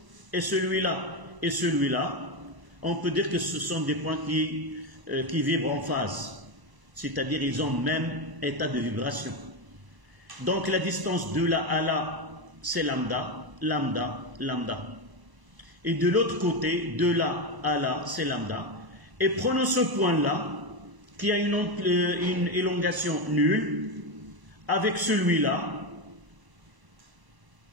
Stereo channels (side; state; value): left; late; 1.0 ms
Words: et celui-là, on peut dire que ce sont des points qui vibrent en phase. C'est-à-dire ils ont le même état de vibration. Donc la distance de là à là, c'est lambda, lambda, lambda. Et de l'autre côté, de là à là, c'est lambda. Et prenons ce point-là, qui a une élongation nulle, avec celui-là.